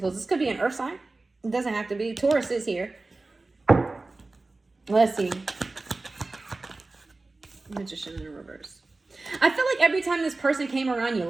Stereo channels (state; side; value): quieter; left; 3.3 dB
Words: This could be an earth sign. It doesn't have to be. Taurus is here. Let's see. Magician in reverse. I feel like every time this person came around, you